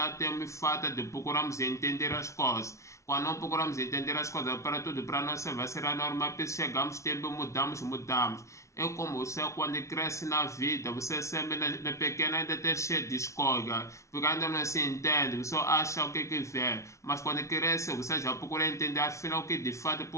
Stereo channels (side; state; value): right; late; 0.14 ms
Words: tem falta de procurarmos entender as coisas. Quando não procuramos entender as coisas para tudo, para nós vai ser a norma, chegamos, tempo mudamos. É como você, quando cresce na vida, você sempre na pequena ainda está cheio de escolha, porque ainda não se entende, você acha o que vê, mas quando cresce, você já procura entender afinal o que de fato